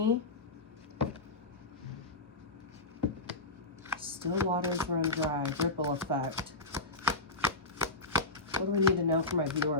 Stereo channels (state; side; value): quieter; right; 3.1 dB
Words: Still waters run dry. Ripple effect. What do we need to know from my